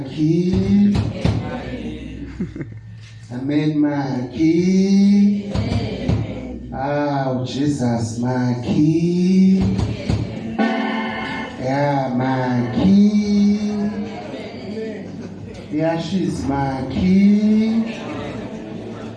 Amen makhi. Jesus makhi. Yeah makhi. Yeah she's makhi.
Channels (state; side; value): identical; both; correlation 1.00